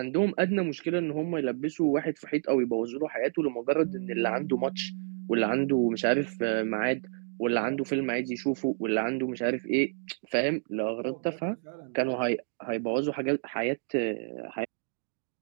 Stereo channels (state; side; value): silent; left; digital silence